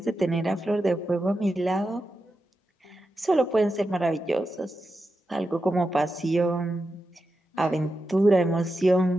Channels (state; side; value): normal; both; correlation 0.89